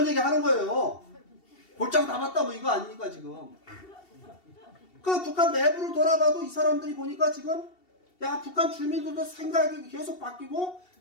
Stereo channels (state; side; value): late; right; 2.7 ms